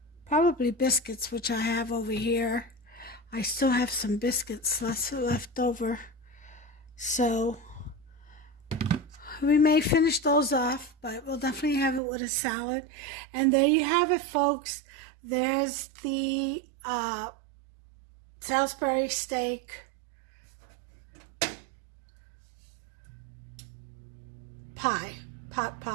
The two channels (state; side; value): drops out; left; at 12.0 s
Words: probably biscuits, which I have over here. I still have some biscuits left over, so we may finish those off, but we'll definitely have it with a salad. And there you have it, folks. There's the Salisbury steak pie, pot